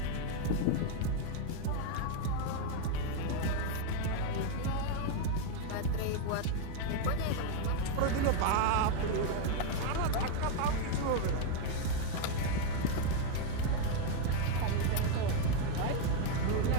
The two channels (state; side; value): different; both; correlation 0.01